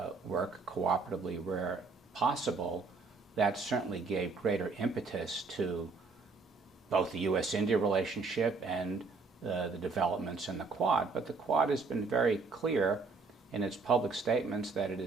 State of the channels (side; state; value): left; quieter; 4.2 dB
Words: work cooperatively where possible, that certainly gave greater impetus to both the U.S.-India relationship and the developments in the Quad. But the Quad has been very clear in its public statements that it